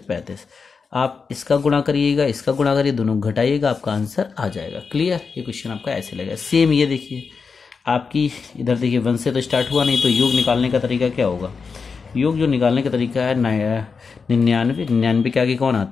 35, आप इसका गुणा करिएगा, इसका गुणा करिए, दोनों घटाइएगा, आपका आंसर आ जाएगा। क्लियर। ये क्वेश्चन आपका ऐसे लगेगा। सेम ये देखिए आपकी इधर देखिए 1 से तो स्टार्ट हुआ नहीं, तो योग निकालने का तरीका क्या होगा, योग जो निकालने का तरीका है 99 के आगे कौन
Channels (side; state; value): right; quieter; 5.2 dB